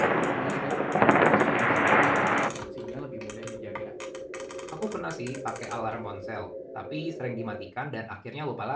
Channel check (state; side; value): identical; both; correlation 1.00